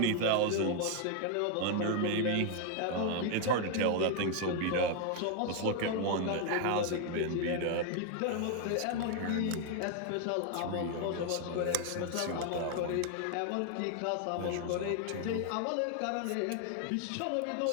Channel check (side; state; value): both; different; correlation 0.00